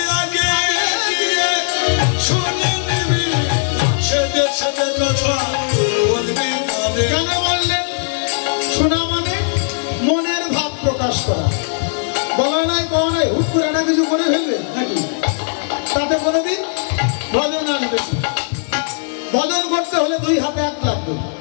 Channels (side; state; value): right; silent; digital silence